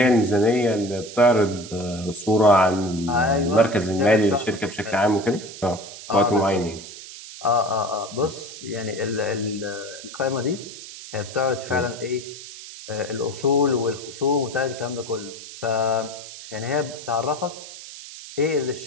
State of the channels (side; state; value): right; noise; hiss, 14 dB below the sound